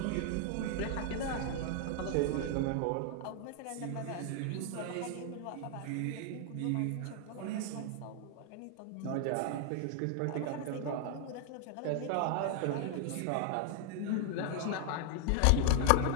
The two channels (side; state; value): both; different; correlation 0.00